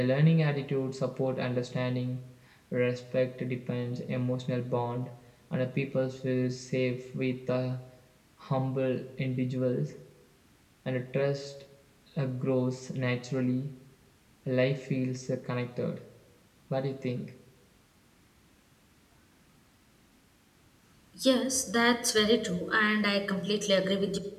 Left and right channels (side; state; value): both; identical; correlation 1.00